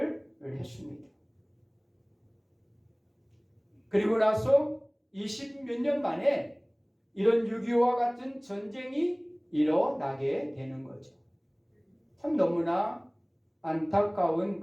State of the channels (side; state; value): both; identical; correlation 1.00